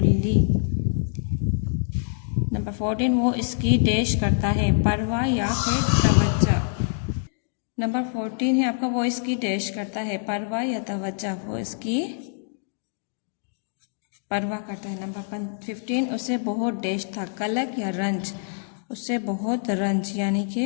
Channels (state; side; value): silent; right; digital silence